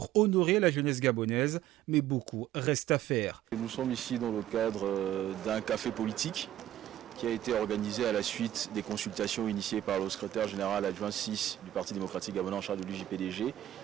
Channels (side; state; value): left; quieter; 12.8 dB